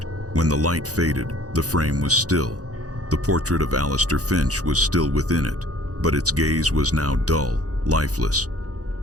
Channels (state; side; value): late; left; 0.67 ms